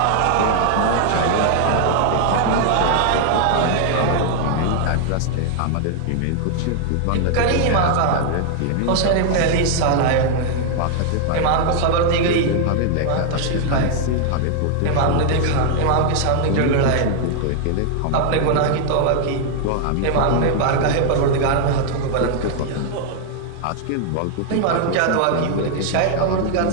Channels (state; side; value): different; both; correlation 0.00